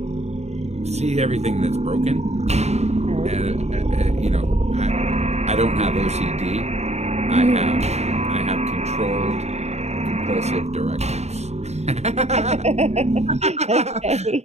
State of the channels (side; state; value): left; late; 0.32 ms